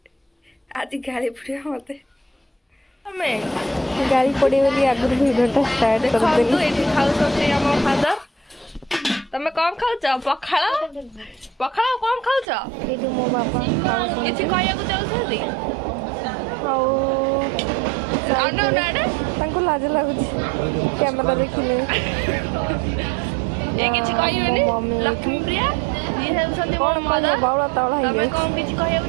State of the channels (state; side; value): drops out; left; at 12.5 s